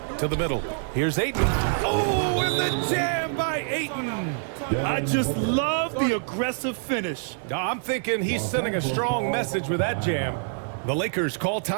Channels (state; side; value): silent; left; digital silence